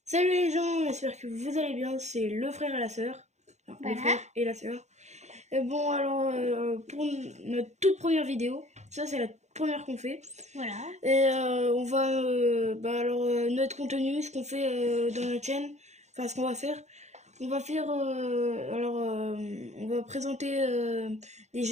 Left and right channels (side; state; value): left; late; 0.33 ms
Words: Salut les gens, j'espère que vous allez bien, c'est le frère et la sœur. Enfin, le frère et la sœur. Et bon, alors, pour notre toute première vidéo, ça c'est la première qu'on fait. Voilà. Et on va, notre contenu, ce qu'on fait dans notre chaîne, enfin ce qu'on va faire, on va faire, on va présenter des